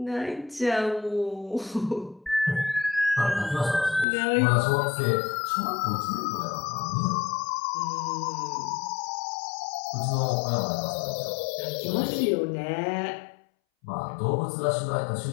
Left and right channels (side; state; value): right; drops out; at 4.0 s